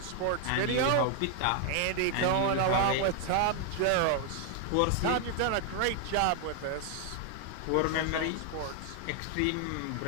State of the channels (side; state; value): both; different; correlation 0.00